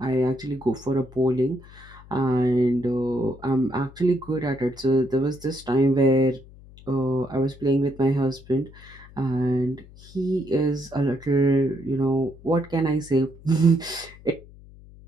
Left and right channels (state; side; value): noise; left; hum, 21 dB below the sound